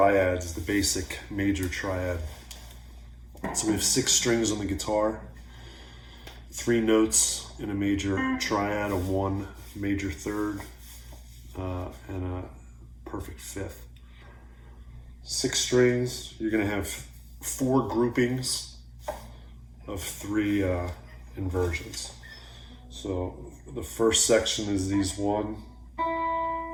the basic major triad. So we have 6 strings on the guitar, 3 notes in a major triad, a 1 major third, and a perfect fifth. 6 strings, you're gonna have 4 groupings of 3 inversions. So the first section is these 1,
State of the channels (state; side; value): identical; both; correlation 1.00